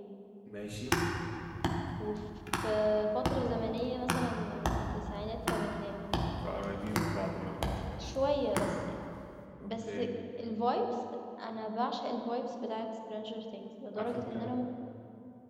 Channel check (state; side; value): identical; both; correlation 1.00